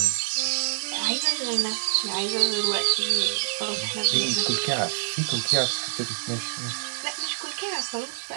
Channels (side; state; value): left; silent; digital silence